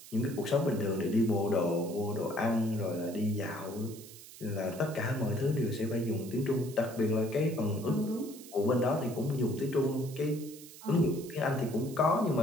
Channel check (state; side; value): noise; right; hiss, 17 dB below the sound